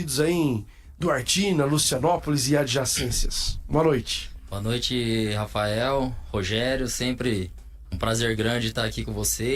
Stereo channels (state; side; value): identical; both; correlation 1.00